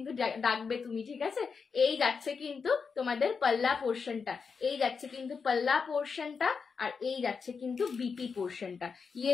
ডাকবে তুমি, ঠিক আছে? এই যাচ্ছে কিন্তু তোমাদের পাল্লা পোর্শনটা, এই যাচ্ছে কিন্তু পাল্লা পোর্শনটা, আর এই যাচ্ছে কিন্তু বিপি পোর্শনটা। ইয়ে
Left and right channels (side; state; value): right; quieter; 5.5 dB